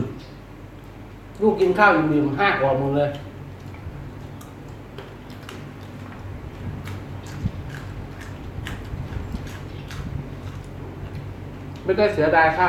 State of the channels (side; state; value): both; identical; correlation 1.00